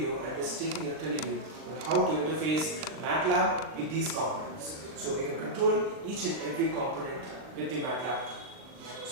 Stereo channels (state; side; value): late; left; 39 ms